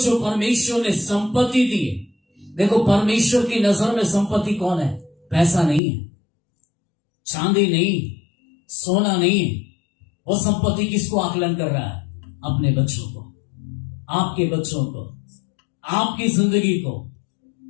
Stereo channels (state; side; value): drops out; right; at 5.8 s